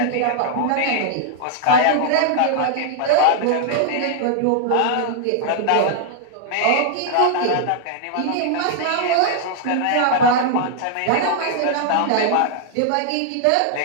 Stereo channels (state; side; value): different; both; correlation -0.01